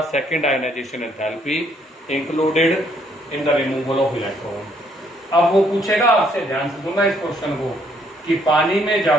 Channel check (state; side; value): normal; both; correlation 0.68